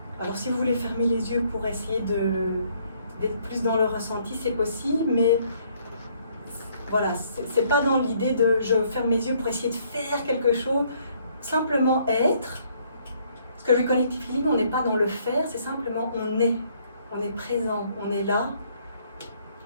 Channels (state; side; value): inverted; both; correlation -0.66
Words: Alors si vous voulez fermer les yeux pour essayer d'être plus dans le ressenti, c'est possible, mais voilà, c'est pas dans l'idée de je ferme mes yeux pour essayer de faire quelque chose, simplement être. Parce que le Connective Healing, on n'est pas dans le faire, c'est simplement on est présent, on est là,